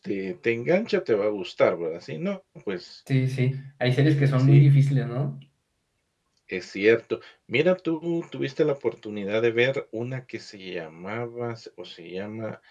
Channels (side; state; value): both; identical; correlation 1.00